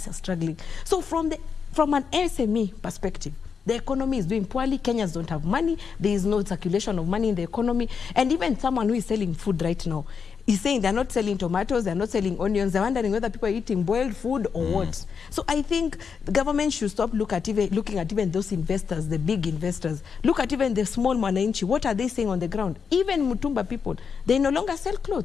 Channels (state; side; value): quieter; right; 6.2 dB